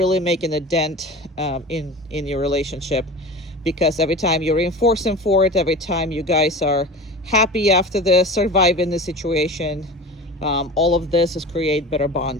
making a dent in your relationship, because every time you reinforce him for it, every time you guys are happy after this, surviving the situation, all of this is create better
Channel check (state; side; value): normal; both; correlation 0.34